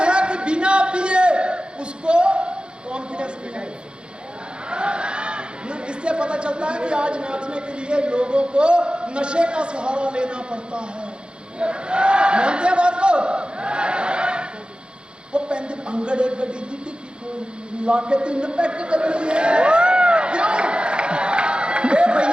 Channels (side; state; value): left; late; 0.052 ms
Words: है कि बिना पिए उसको कॉन्फिडेंस नहीं है। इससे पता चलता है कि आज नाचने के लिए लोगों को नशे का सहारा लेना पड़ता है। मानते हैं बात को? वो पैंती अंगड़े गड्डी दी ला के 3 पैक कर लिए। क्यों?